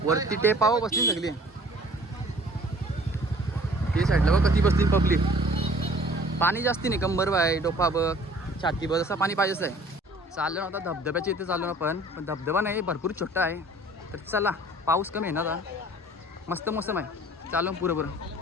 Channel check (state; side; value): normal; both; correlation 0.52